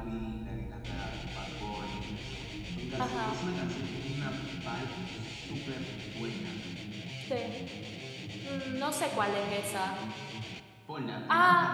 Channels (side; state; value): both; identical; correlation 1.00